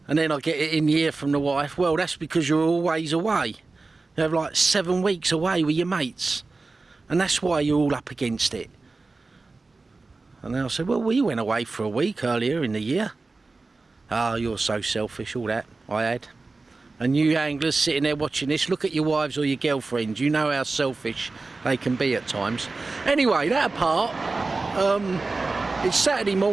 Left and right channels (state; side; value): quieter; left; 3.7 dB